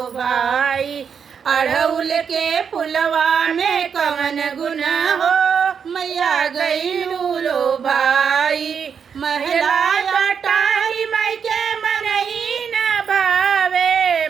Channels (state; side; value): quieter; left; 6.9 dB